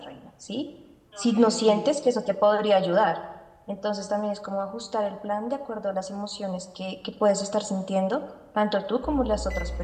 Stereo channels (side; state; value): both; identical; correlation 1.00